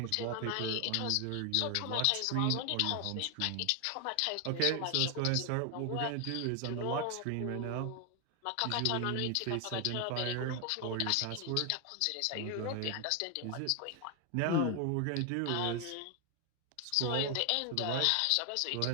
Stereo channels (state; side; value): different; both; correlation 0.00